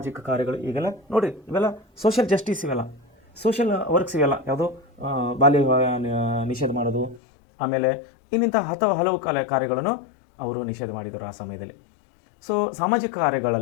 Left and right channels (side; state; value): right; drops out; at 7.2 s